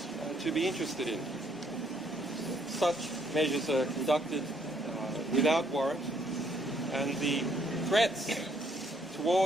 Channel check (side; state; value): both; normal; correlation 0.68